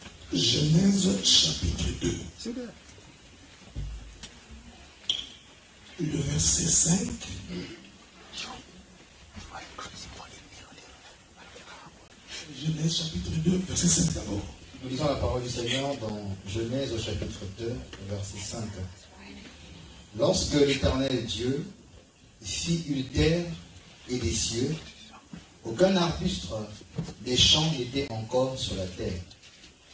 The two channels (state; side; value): identical; both; correlation 1.00